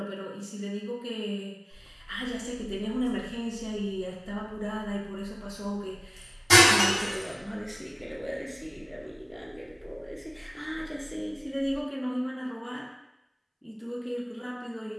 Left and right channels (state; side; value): identical; both; correlation 1.00